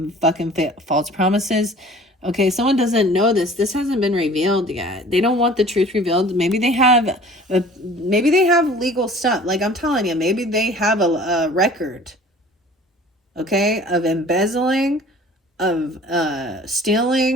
fucking false promises. Okay, someone doesn't know this. This hasn't been revealed yet. They don't want the truth revealed. Maybe they have legal stuff. Like I'm telling you, maybe they have a record, okay, of embezzling, of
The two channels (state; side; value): normal; both; correlation 0.47